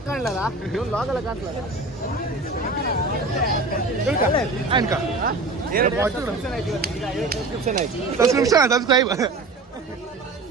ಕಾಣ್ಲಲ್ಲ, ಲಾಕ್ ಎಲ್ಲ ಕಾಣ್ತಲ್ಲ. ಸಬ್ಸ್ಕ್ರೈಬ್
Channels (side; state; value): left; quieter; 3.3 dB